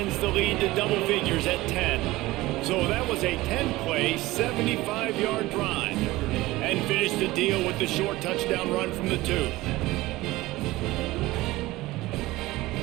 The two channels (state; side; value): quieter; left; 18.8 dB